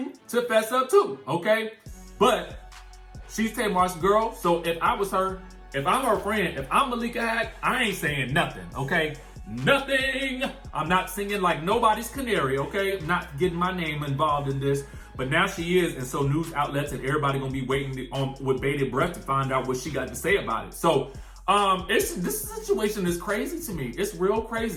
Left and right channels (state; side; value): identical; both; correlation 1.00